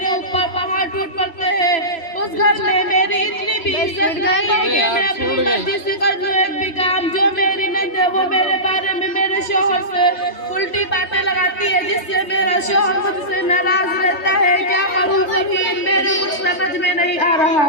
ऊपर पहाड़ टूट पड़ते हैं। उस घर में मेरी इतनी भी इज्जत नहीं है कि मैं अपनी मर्जी से कर लूं एक भी काम। जो मेरी नंद है वो मेरे बारे में मेरे शौहर से उल्टी बातें लगाती है, जिससे मेरा शौहर मुझसे नाराज रहता है। क्या करूं फरहीन, मेरे कुछ समझ में नहीं आ रहा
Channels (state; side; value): late; right; 3.3 ms